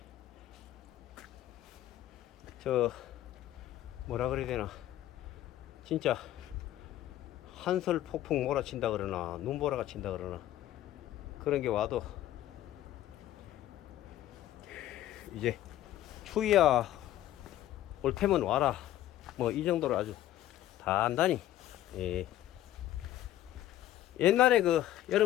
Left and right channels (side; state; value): right; quieter; 13.3 dB